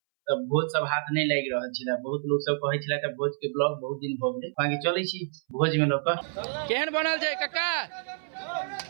तब भोज सब हाथ नहीं लाग रहल छे। बहुत लोग सब कहे छले त भोज के ब्लॉग बहुत दिन भ गेलै बाकी चलै छी भोज में लोग केहन बनल छै काका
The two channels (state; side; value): silent; left; 59 dB below the other